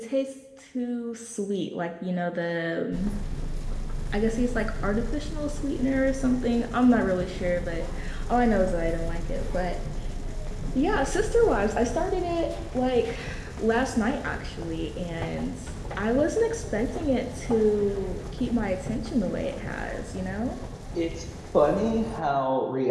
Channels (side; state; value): both; identical; correlation 1.00